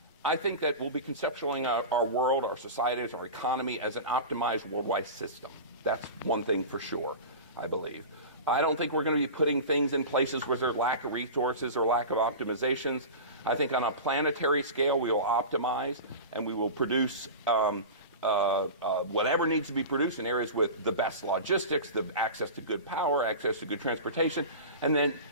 I think that we'll be conceptualizing our world, our societies, our economy as an optimized worldwide system. That's one thing for sure, I believe. I don't think we're going to be putting things in places where there's lack of resources or lack of optimizations. I think on a planetary scale, we will optimize and we will produce whatever needs to be produced in areas with the best logistics, the access to good power, access to good transportation. And then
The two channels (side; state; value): both; inverted; correlation -0.30